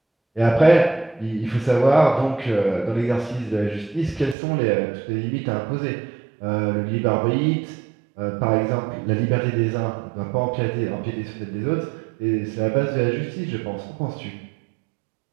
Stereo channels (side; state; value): left; drops out; at 4.4 s